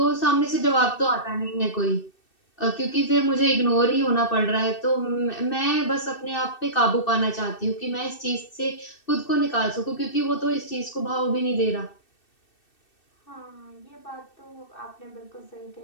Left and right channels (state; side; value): late; right; 2.6 ms